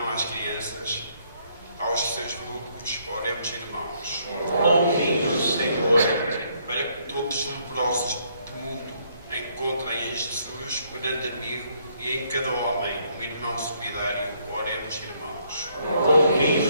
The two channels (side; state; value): both; inverted; correlation -0.69